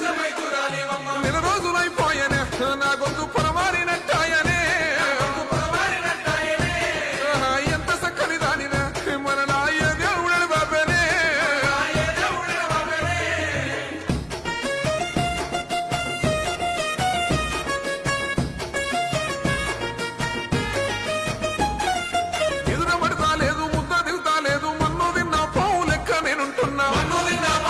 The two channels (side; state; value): both; identical; correlation 1.00